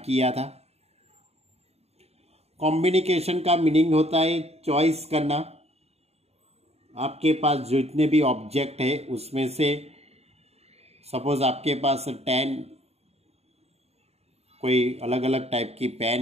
किया था। कॉम्बिनेशन का मीनिंग होता है चॉइस करना। आपके पास जितने भी ऑब्जेक्ट है उसमें से सपोज आपके पास 10 कोई अलग अलग टाइप की पेन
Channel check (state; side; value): late; left; 0.30 ms